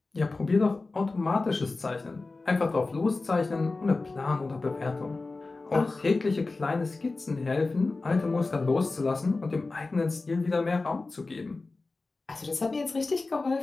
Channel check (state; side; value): quieter; right; 3.5 dB